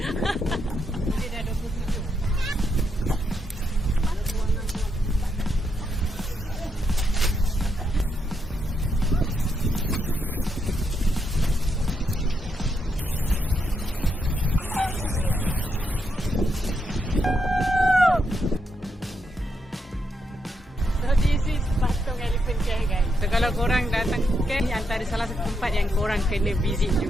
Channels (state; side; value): normal; both; correlation 0.80